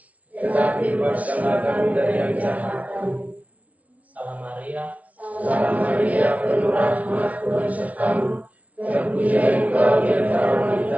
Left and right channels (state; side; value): late; left; 0.068 ms